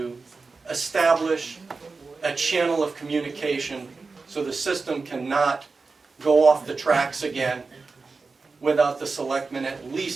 establish a channel of communication so the system cannot go off the tracks again without the selectmen at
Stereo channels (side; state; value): left; quieter; 4.2 dB